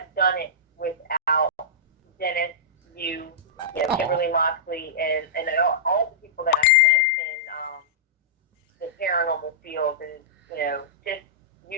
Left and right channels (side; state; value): both; normal; correlation -0.15